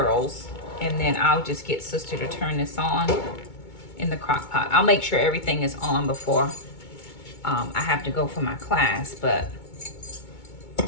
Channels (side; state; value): right; late; 2.2 ms